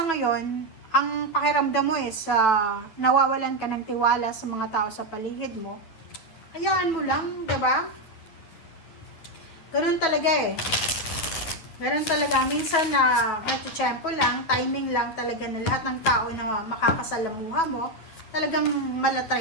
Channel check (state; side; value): late; right; 9.2 ms